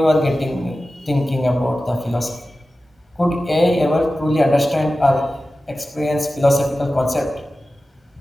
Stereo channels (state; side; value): normal; both; correlation 0.95